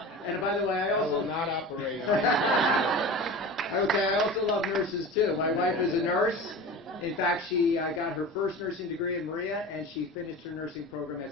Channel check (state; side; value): normal; both; correlation 0.33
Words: and by the way, I also... I will not operate on it. Okay, I also love nurses, too. My wife is a nurse. In fact, she got her first nursing degree in Maria, and she finished her nursing program at